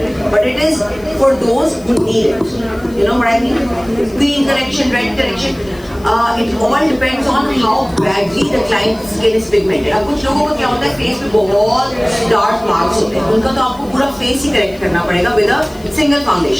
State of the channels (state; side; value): noise; left; hiss, 25 dB below the sound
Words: but it is for those who need it. You know what I mean? Green correction, red correction. It all depends on how badly the client's skin is pigmented. अब कुछ लोगों का क्या होता है, फेस पे बहुत dark marks होते हैं, उनका तो आपको पूरा फेस ही करेक्ट करना पड़ेगा विद अ सिंगल